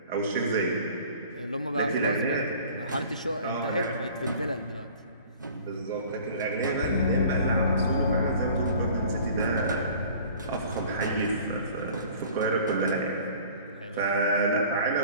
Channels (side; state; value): both; inverted; correlation -0.47